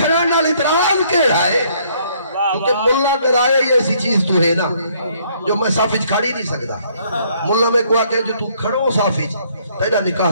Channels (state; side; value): inverted; both; correlation -0.65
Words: اعتراض کیڑا ہے کیونکہ ملہ ڈرائے یہ ایسی چیز تو ہے نا جو میں صافج کھڑی نہیں سکتا ملہ میں کوئی آکے جو تو کھڑو صافج تیرا